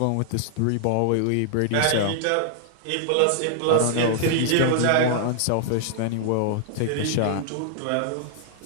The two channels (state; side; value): different; both; correlation -0.01